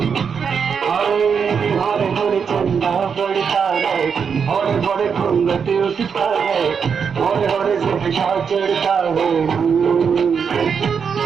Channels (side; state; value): left; quieter; 6.5 dB